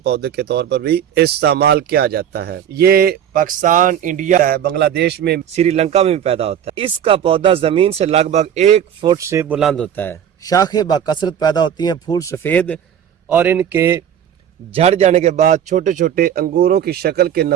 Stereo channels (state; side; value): quieter; left; 9.4 dB